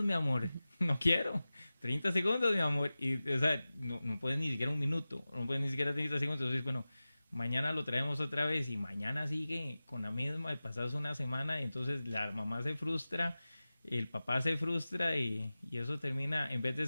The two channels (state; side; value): inverted; both; correlation -0.96